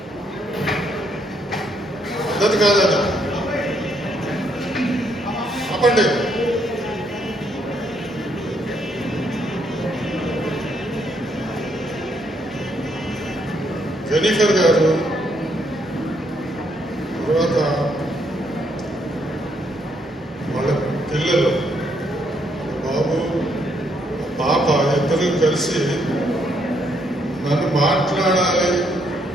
పద్ధతి కాదు అది. ఆపండి. జెనిఫర్ గారు, తర్వాత వాళ్ళ పిల్లలు, బాబు, పాప ఇద్దరు కలిసి నన్ను మాట్లాడాలి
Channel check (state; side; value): normal; both; correlation 0.73